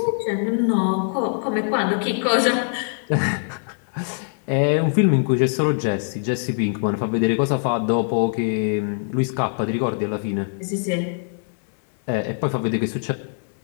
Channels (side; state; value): right; silent; 64 dB below the other